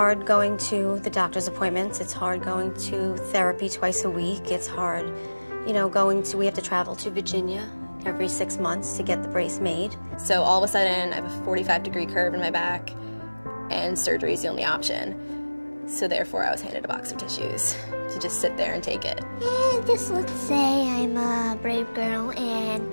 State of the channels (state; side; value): inverted; both; correlation -1.00